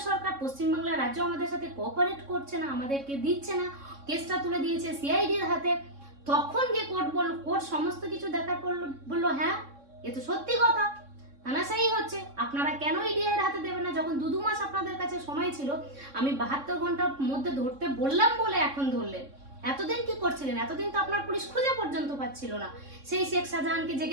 সরকার, পশ্চিমবাংলার রাজ্য আমাদের সাথে কোঅপারেট করছে না, আমাদেরকে দিচ্ছে না, কেসটা তুলে দিয়েছে সিআইডির হাতে। তখন গিয়ে কোর্ট সমস্ত কিছু দেখার পর বললো হ্যাঁ এ তো সত্যি কথা, তানাশাই হচ্ছে, আপনারা কেন ইডি এর হাতে দেবেন না? যখন 2 মাস আপনাদের কাছে সময় ছিল, আমি 72 ঘন্টার মধ্যে ধরতে বললাম বলে এখন ধরলেন। এতদিন কি করছিলেন? এতদিন তো আপনার পুলিশ খুঁজে পর্যন্ত পাচ্ছিল না সেই শেখ শাহজাহানকে, যে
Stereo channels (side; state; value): left; late; 3.6 ms